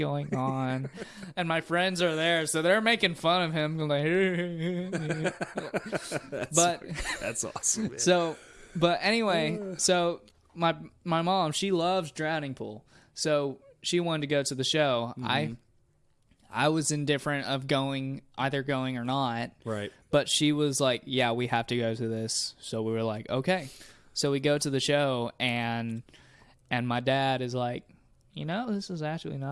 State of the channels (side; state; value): both; identical; correlation 1.00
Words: on? And my friends are there, so they're making fun of him. Like, That's awesome, man. So, but anyway, so my mom, she loves drowning pool, so she wanted to go to the show. Mm-hmm. I was indifferent of either going or not. Right. But she was like, yeah, we have to go to this. So we were like, okay. So we go to the show, and my dad is like, this is actually